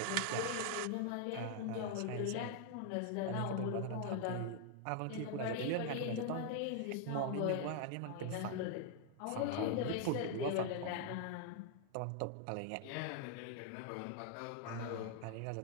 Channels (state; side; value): different; both; correlation 0.00